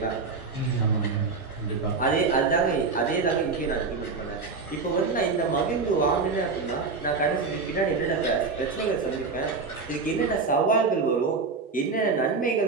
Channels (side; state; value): left; quieter; 4.5 dB